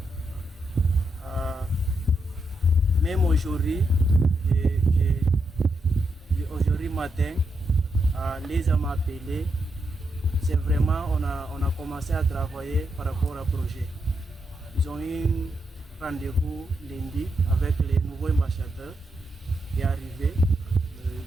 Même aujourd'hui, aujourd'hui matin, Lisa m'a appelé. C'est vraiment, on a commencé à travailler par rapport au projet. Ils ont eu un rendez-vous lundi avec les nouveaux ambassadeurs qui est arrivé le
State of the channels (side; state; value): both; normal; correlation 0.82